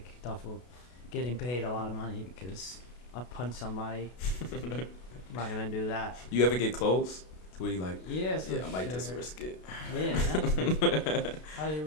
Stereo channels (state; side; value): late; right; 33 ms